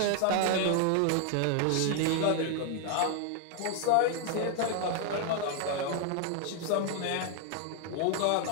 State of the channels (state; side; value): different; both; correlation 0.00